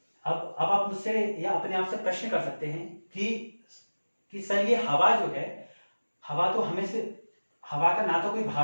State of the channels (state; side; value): inverted; both; correlation -1.00